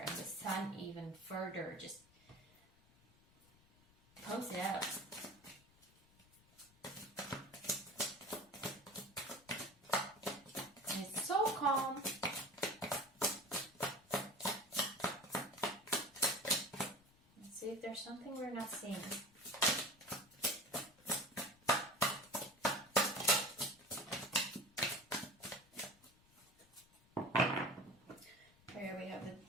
the sun even further just pumps it out. And it's so calm. see if there's something we're not seeing. Here we have the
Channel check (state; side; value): noise; left; rumble, 28 dB below the sound